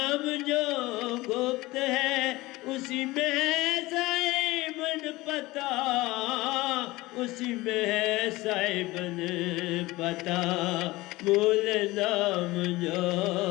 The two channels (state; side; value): quieter; right; 20.0 dB